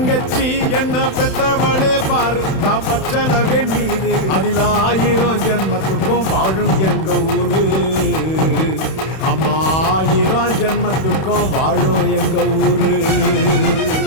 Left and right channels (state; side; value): late; right; 31 ms